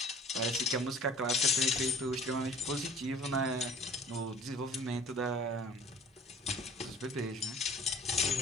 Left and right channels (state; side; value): normal; both; correlation 0.48